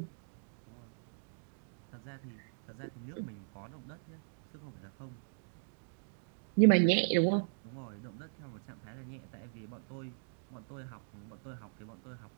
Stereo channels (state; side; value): silent; left; digital silence